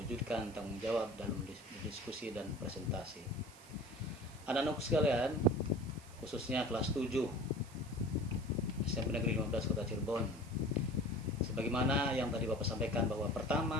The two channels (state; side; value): noise; right; hiss, 21 dB below the sound